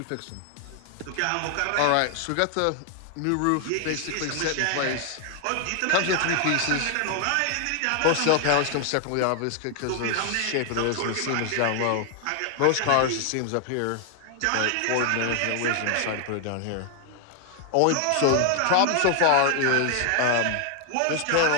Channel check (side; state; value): both; different; correlation 0.00